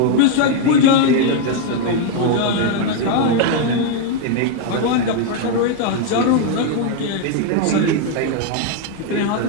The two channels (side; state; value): both; different; correlation 0.01